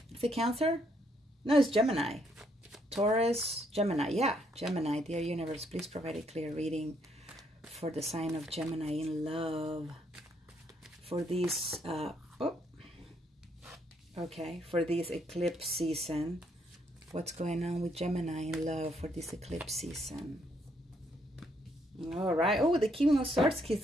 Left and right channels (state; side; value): normal; both; correlation 0.72